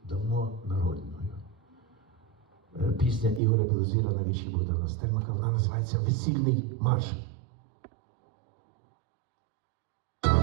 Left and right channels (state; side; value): drops out; left; at 3.4 s